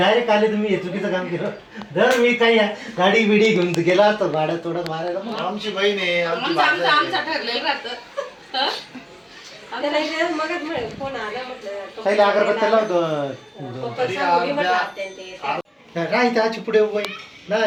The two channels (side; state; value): both; identical; correlation 1.00